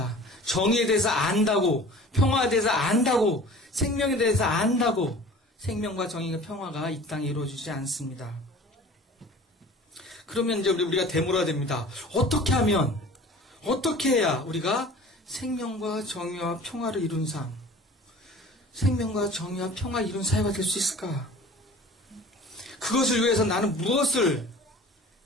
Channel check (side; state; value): both; normal; correlation 0.43